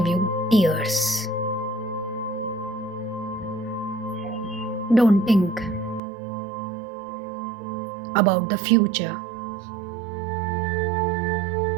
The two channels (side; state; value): left; drops out; at 6.0 s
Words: you tears. Don't think about the future.